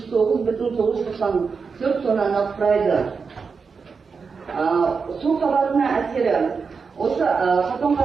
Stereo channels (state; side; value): quieter; left; 5.2 dB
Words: тоннаны құрайды. Су қабатына әсері. Осы